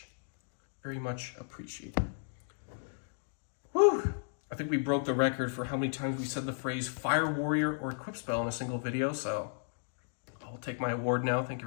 Very much appreciated. Whew! I think we broke the record for how many times we said the phrase Fire Warrior or Equip Spell in a single video, so I'll take my award now. Thank you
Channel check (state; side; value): silent; right; digital silence